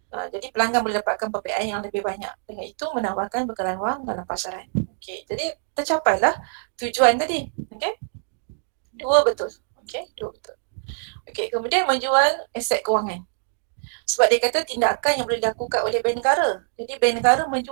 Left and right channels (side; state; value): left; silent; digital silence